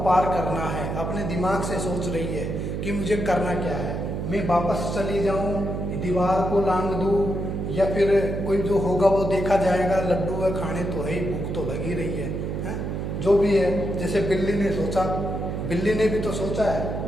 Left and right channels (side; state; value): right; noise; hum, 3 dB below the sound